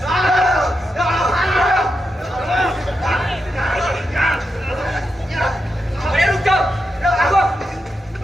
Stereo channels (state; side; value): normal; both; correlation 0.86